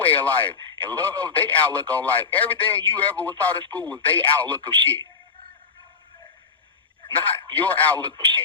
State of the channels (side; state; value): right; quieter; 5.4 dB